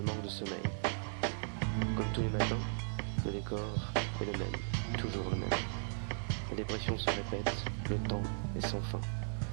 manque de sommeil. Comme tous les matins, le décor est le même, toujours le même. La dépression se répète, le temps est sans fin.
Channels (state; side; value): silent; left; 53 dB below the other